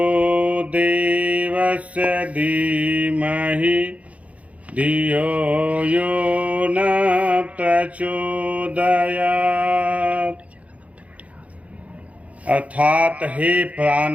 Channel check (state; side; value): late; left; 0.066 ms